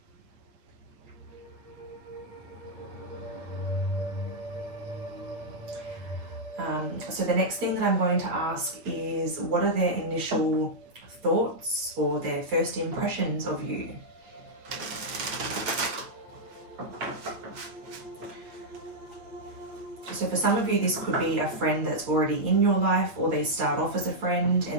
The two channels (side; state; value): left; late; 8.8 ms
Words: So the next thing that I'm going to ask is, what are their initial thoughts or their first impressions of you? So for some of you, this could be a friend that's already in your life, or they start off as a friend